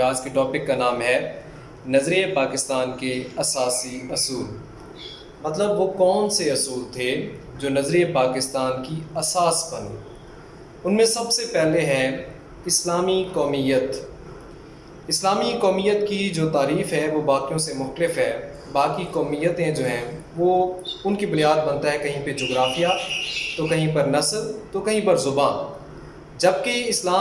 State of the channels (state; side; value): identical; both; correlation 1.00